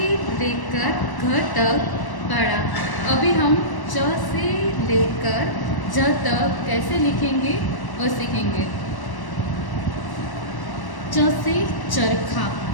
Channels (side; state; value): right; late; 1.1 ms